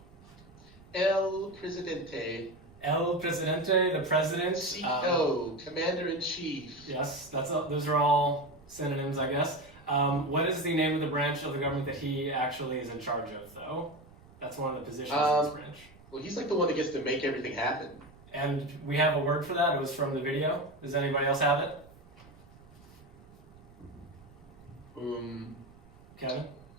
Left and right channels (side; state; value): right; noise; rumble, 24 dB below the sound